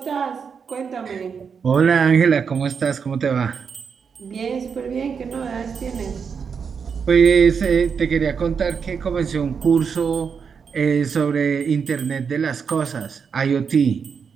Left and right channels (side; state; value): left; quieter; 6.3 dB